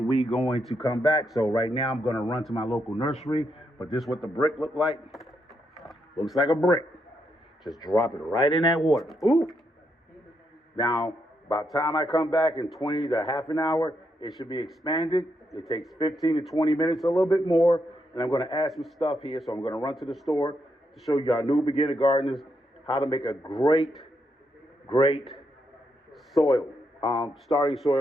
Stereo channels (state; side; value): normal; both; correlation 0.80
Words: we going to come back. So right now I'm going to run to my local nursery. But this is what the brick look like. Looks like a brick. Just drop it right in that water. Ooh. Now, by the time I come back in 20 to half an hour, it should be expanded. It takes 15 to 20 minutes, a little bit more. And I'm going to add some stuff here. So I'm going to run to the store to show you our new beginner gardeners how to make a great soil, starting